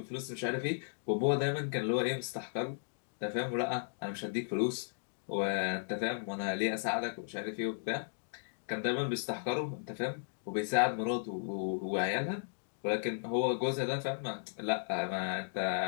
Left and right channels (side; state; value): right; silent; digital silence